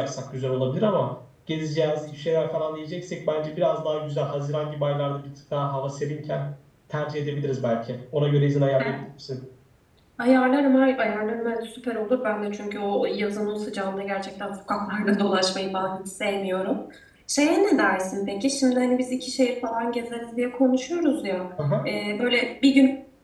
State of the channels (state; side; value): identical; both; correlation 1.00